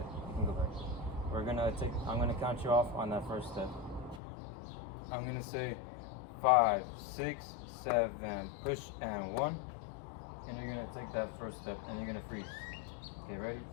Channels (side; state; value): right; drops out; at 4.2 s